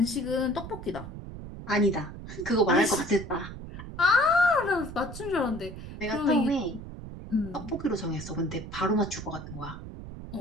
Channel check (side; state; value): right; noise; rumble, 11 dB below the sound